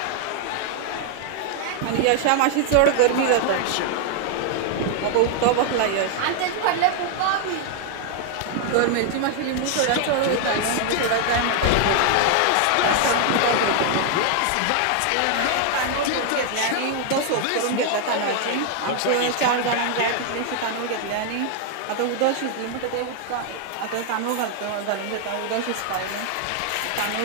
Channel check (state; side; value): different; both; correlation 0.00